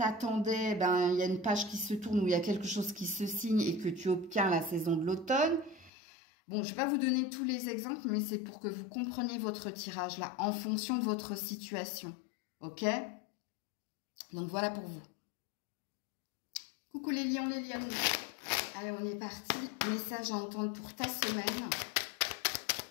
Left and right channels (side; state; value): right; drops out; at 5.9 s